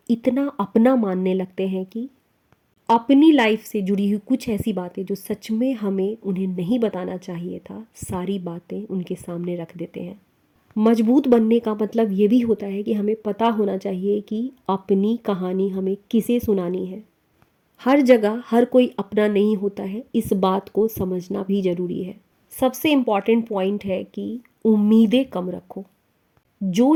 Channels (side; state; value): both; identical; correlation 1.00